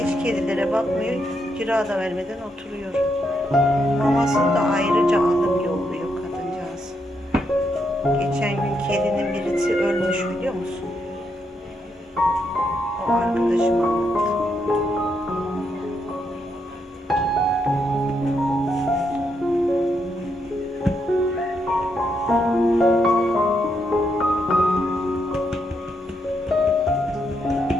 kedilere bakmıyor. Kira da vermeden oturuyor. Mamasını da ayrıca alıp yolluyor kadıncağız. Geçen gün kedinin birisi ölmüş biliyor musun? O arkadaşım anlattı.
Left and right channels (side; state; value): both; normal; correlation 0.79